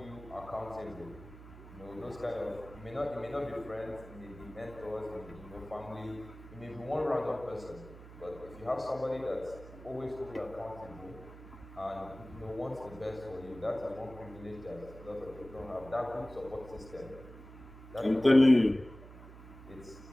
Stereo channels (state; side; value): noise; right; hum, 16 dB below the sound